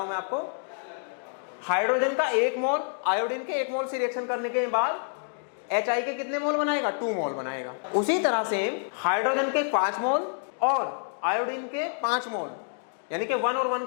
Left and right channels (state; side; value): silent; right; 60 dB below the other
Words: हूं मैं आपको. हाइड्रोजन का 1 मोल आयोडीन के 1 मोल से रिएक्शन करने के बाद HI के कितने मोल बनाएगा 2 मोल बनाएगा. उसी तरह से हाइड्रोजन के 5 मोल और आयोडीन के 5 मोल यानी कि 1 और 1